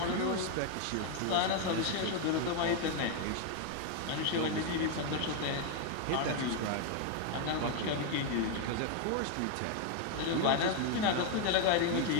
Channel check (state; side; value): different; both; correlation 0.01